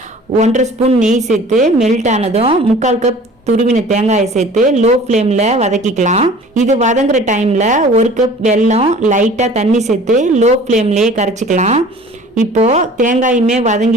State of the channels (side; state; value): both; normal; correlation 0.47